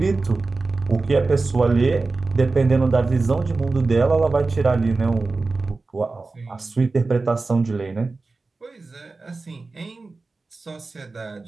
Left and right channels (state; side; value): quieter; left; 3.7 dB